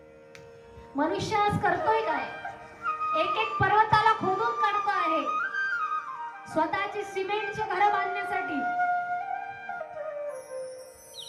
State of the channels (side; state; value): both; identical; correlation 1.00